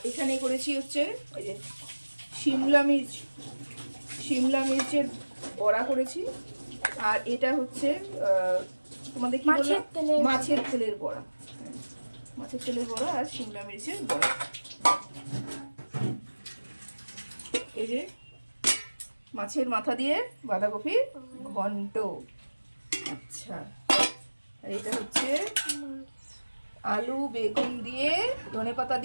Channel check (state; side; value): inverted; both; correlation -1.00